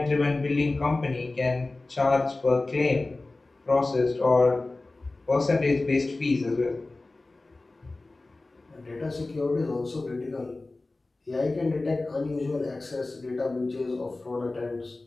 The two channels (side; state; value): right; quieter; 3.1 dB